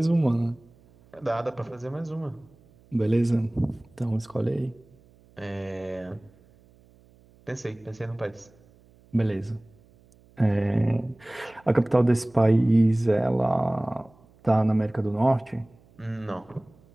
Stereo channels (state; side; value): noise; right; hum, 29 dB below the sound